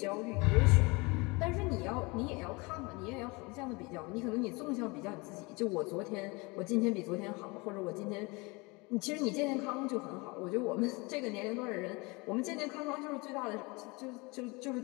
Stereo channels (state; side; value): quieter; right; 26.5 dB